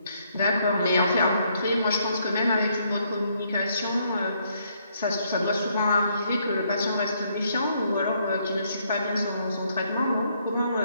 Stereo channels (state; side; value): inverted; both; correlation -0.71